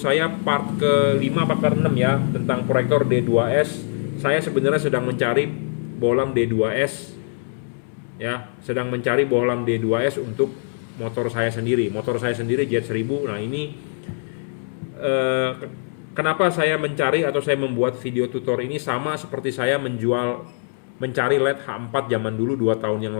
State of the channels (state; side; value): silent; right; 64 dB below the other